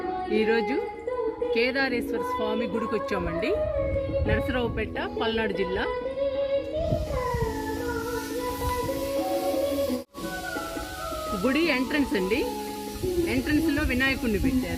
ఈరోజు కేదారేశ్వర స్వామి గుడికి వచ్చామండి. నరసరావుపేట, పల్నాడు జిల్లా. గుడి ఎంట్రన్స్ అండి. ఎంట్రన్స్లో వినాయకుడిని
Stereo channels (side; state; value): both; identical; correlation 1.00